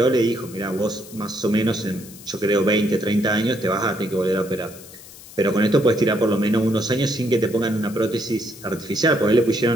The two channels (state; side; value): noise; left; hiss, 18 dB below the sound